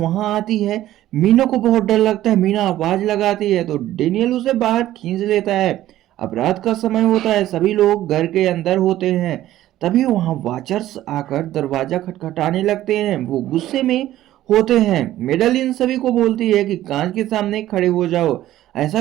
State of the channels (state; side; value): quieter; left; 13.9 dB